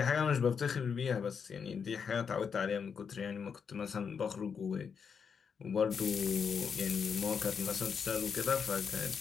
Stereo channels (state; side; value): quieter; right; 6.4 dB